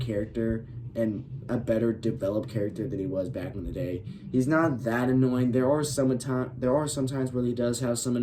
and a better developed character than he was back in the day. He's not that annoying. There are some times where he does have some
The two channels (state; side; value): identical; both; correlation 1.00